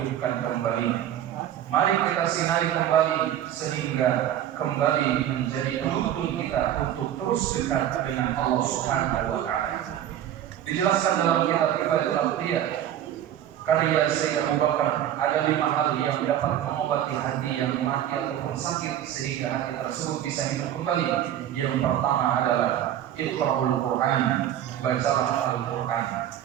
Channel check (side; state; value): left; quieter; 11.2 dB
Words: kembali. Mari kita sinari kembali sehingga kembali menjadi penuntun kita untuk terus dekat dengan Allah Subhanahu wa taala. Dijelaskan dalam kitab Kifayatul Awliya karya Sayyid Abu Bakar, ada 5 hal yang dapat mengobati hati yang mati ataupun sakit sehingga hati tersebut bisa hidup kembali. Yang pertama adalah Iqra'ul Quran, bacalah Al-Quran.